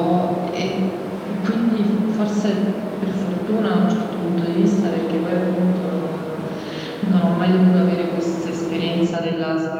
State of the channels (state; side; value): identical; both; correlation 1.00